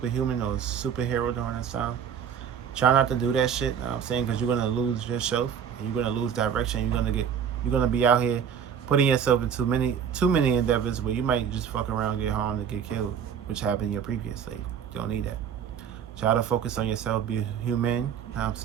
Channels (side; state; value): left; quieter; 7.9 dB